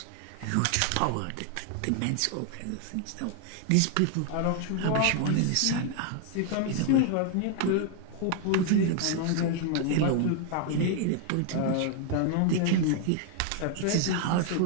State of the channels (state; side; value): different; both; correlation 0.00